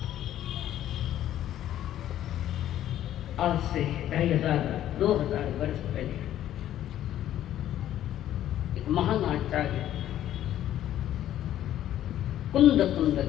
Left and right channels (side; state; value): right; quieter; 12.1 dB